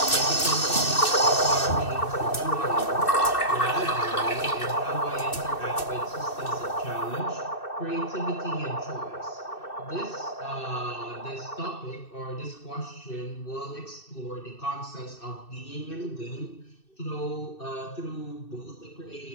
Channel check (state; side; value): late; right; 2.6 ms